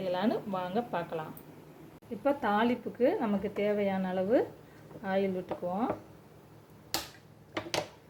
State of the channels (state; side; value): identical; both; correlation 1.00